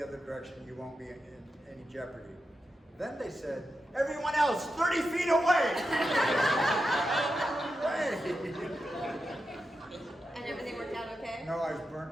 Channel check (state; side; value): normal; both; correlation 0.89